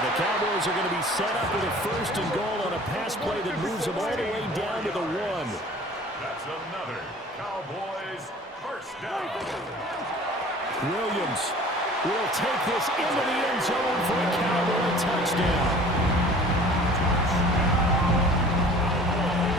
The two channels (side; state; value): both; normal; correlation 0.46